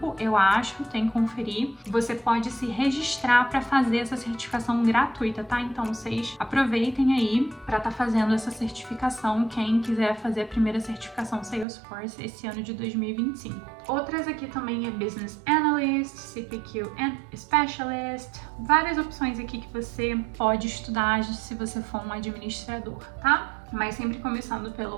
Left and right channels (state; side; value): drops out; left; at 11.7 s